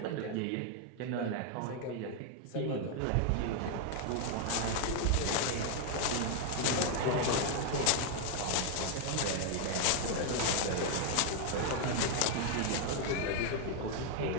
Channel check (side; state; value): both; different; correlation 0.00